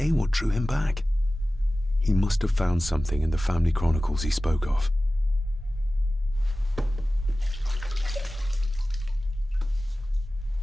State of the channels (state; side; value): normal; both; correlation 0.96